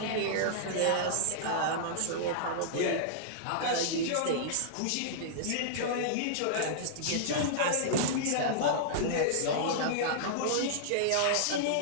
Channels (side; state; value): both; different; correlation -0.02